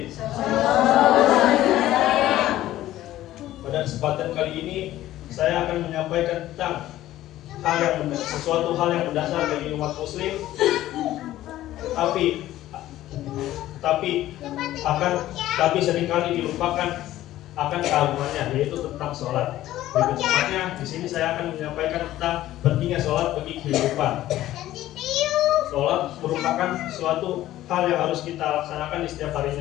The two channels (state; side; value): quieter; right; 14.4 dB